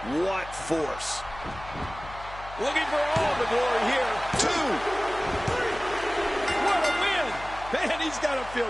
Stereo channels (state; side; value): noise; left; hum, 15 dB below the sound